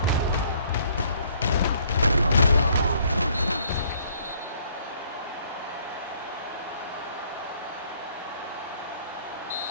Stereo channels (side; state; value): both; inverted; correlation -0.62